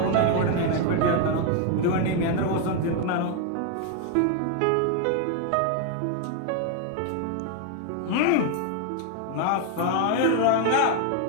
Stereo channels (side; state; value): both; different; correlation 0.01